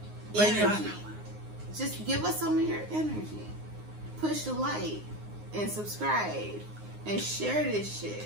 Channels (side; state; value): left; late; 9.6 ms